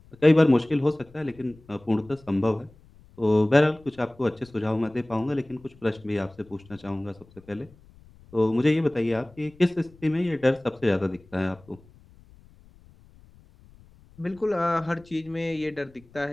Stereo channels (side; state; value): left; noise; rumble, 26 dB below the sound